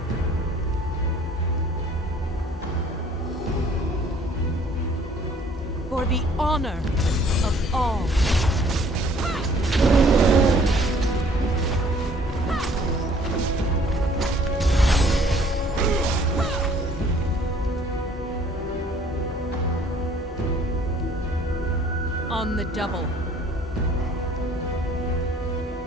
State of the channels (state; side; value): normal; both; correlation 0.57